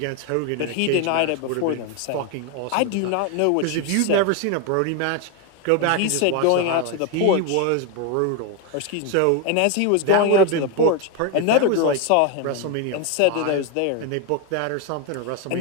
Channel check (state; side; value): different; both; correlation 0.02